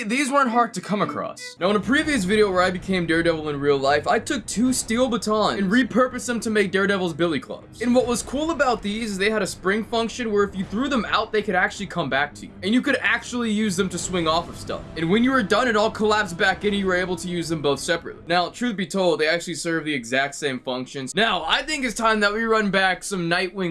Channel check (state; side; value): identical; both; correlation 1.00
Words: these weren't hard to come across. Now, in a previous video where I became Daredevil in real life, I took 2 steel batons and repurposed them to make Daredevil's billy clubs. And what was cool about these is they had a spring function where if you threw them out, they could actually come back to you. And you could actually use them to swing off of stuff. And when you were done, it all collapsed back in and you were able to use them both separately. Now, truth be told, they actually serve the exact same functions. Now, I think it's time that we run back some